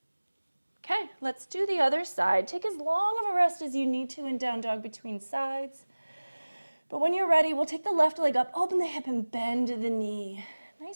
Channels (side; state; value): both; inverted; correlation -1.00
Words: Okay, let's do the other side. Take as long of a rest as you need to in down dog between sides. But when you're ready, we'll take the left leg up, open the hip, and bend the knee.